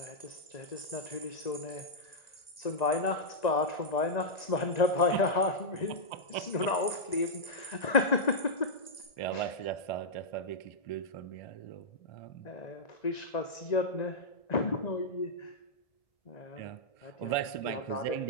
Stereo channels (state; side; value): late; right; 1.9 ms